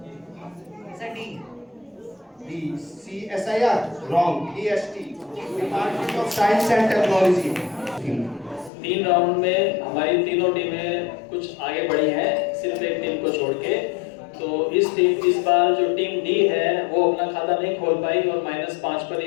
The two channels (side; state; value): right; drops out; at 8.7 s